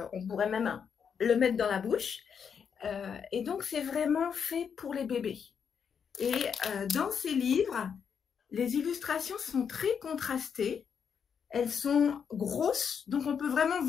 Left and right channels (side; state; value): right; quieter; 7.0 dB